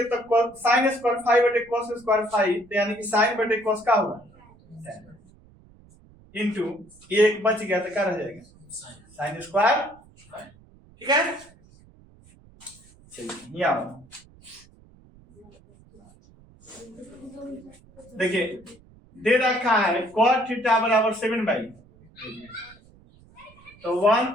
तो साइन स्क्वायर फाइव बटे cos स्क्वायर फाइव, तो यानी कि साइन बटे cos का होगा इंटू एक बच गया तो क्या रह जाएगा, साइन स्क्वायर, ठीक है। चलिए यहाँ देखिए दे रखा है cot थीटा बराबर 7/, तो 1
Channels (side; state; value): right; noise; rumble, 26 dB below the sound